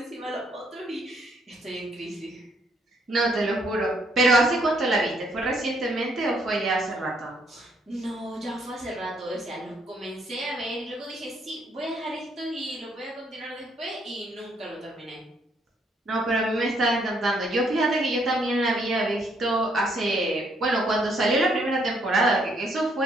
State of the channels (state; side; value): normal; both; correlation 0.70